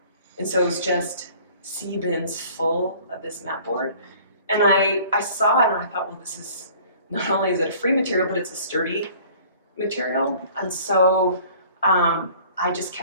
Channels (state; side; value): inverted; both; correlation -0.51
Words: And so it was just sea bins full of this mat board. And I saw it and I thought, well, this is, not only is it a free material, but it's a sturdy material. And so I just